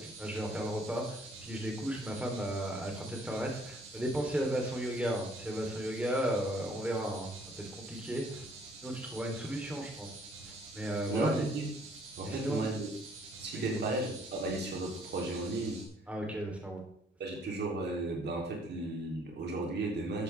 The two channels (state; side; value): normal; both; correlation 0.62